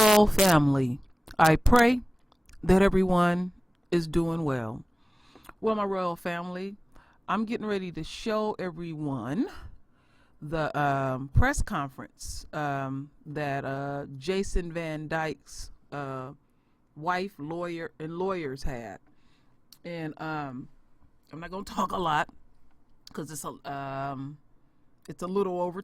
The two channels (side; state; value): both; normal; correlation 0.98